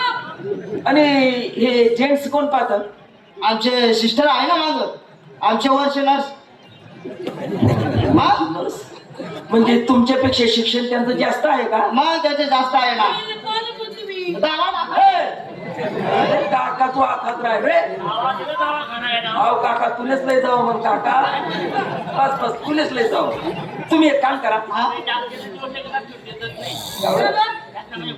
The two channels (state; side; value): identical; both; correlation 1.00